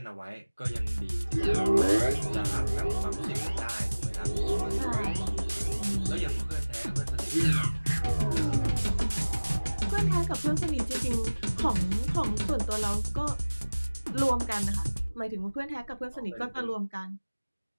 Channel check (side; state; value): both; inverted; correlation -1.00